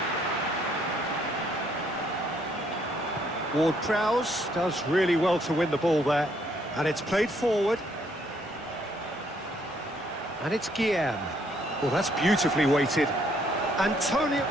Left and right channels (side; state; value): both; normal; correlation 0.69